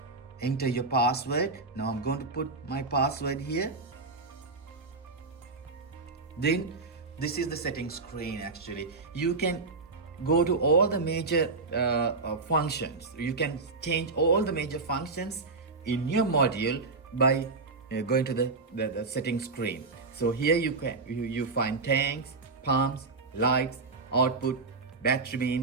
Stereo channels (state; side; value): quieter; left; 3.9 dB